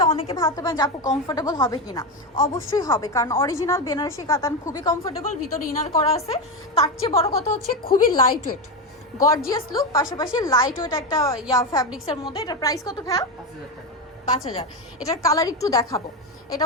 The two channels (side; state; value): both; normal; correlation 0.13